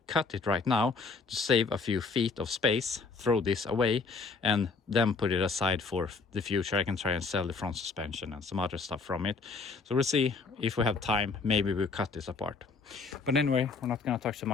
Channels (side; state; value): right; quieter; 4.5 dB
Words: cut it right now to save a few feet of space, throw this away, and then put it aside for the future. I can try and sell the front suspension and some other stuff from it. So we'll see if we have time. Maybe we'll cut this apart. But anyway, we're not going to talk too